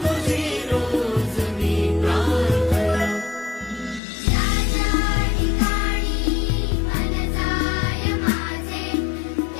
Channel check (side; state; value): right; drops out; at 4.0 s